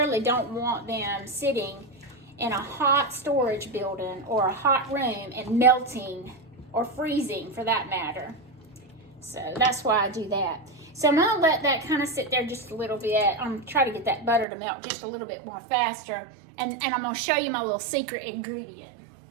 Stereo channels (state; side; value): drops out; left; at 14.5 s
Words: don't want them sitting in a hot storage building or a hot room and melting, or freezing for that matter. So that's why I do that. So I'm gonna let that kind of sit there just a little bit. I'm trying to get that butter to melt just a little bit more faster. And I'm gonna show you my little secret ingredient.